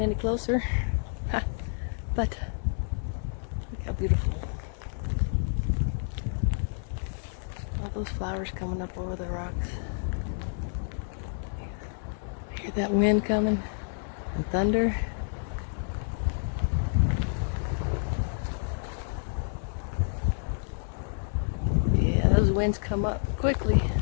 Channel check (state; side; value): silent; right; digital silence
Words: any closer, but look how beautiful. All those flowers coming up over the rocks. Hear that wind coming and thunder. Yeah, those winds come up quickly.